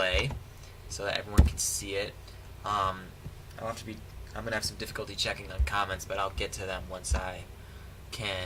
so that everyone can see it. I'm going to have some difficulty checking on comments, but I'll get to them once I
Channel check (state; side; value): identical; both; correlation 1.00